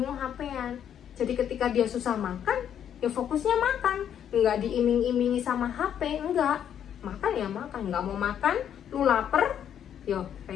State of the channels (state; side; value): quieter; right; 9.4 dB